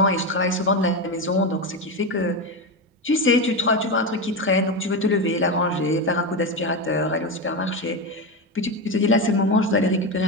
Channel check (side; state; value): both; normal; correlation 0.16